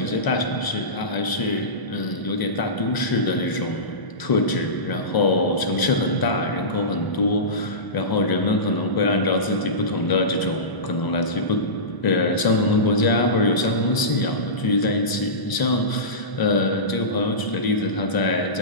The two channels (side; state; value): right; late; 1.0 ms